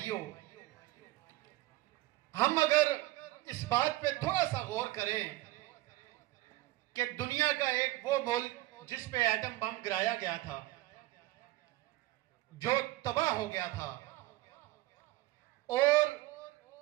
हम अगर इस बात पे थोड़ा सा गौर करें कि दुनिया का एक वो मुल्क जिस पे एटम बम गिराया गया था, जो तबाह हो गया था, और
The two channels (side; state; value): left; quieter; 17.9 dB